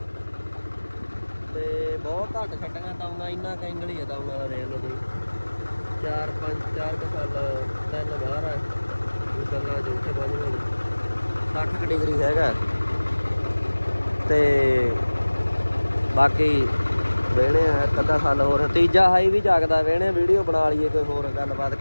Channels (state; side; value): inverted; both; correlation -1.00